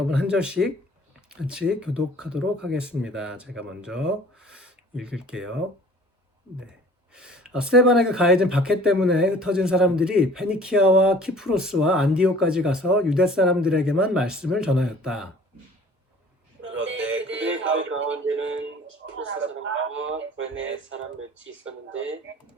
한 절씩 같이 교독하도록 하겠습니다. 제가 먼저 읽을게요. 네. 스테반에게 가해진 박해 때문에 흩어진 사람들이 페니키아와 키프로스와 안디오까지 가서 유대 사람들에게만 말씀을 전하였다. 그런데 그들의 가운데는 키프로스 사람과 구레네 사람 몇이 있었는데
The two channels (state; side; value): normal; both; correlation 0.50